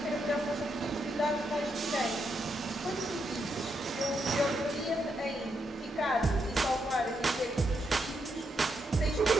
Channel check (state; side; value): normal; both; correlation 0.81